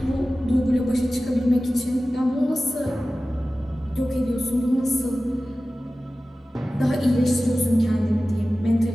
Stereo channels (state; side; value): normal; both; correlation 0.96